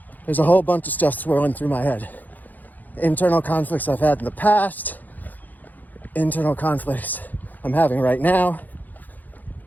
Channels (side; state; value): right; late; 0.083 ms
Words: There's a whole bunch of stuff swirling through my head. Internal conflicts I've had in the past, internal conflicts I'm having right now.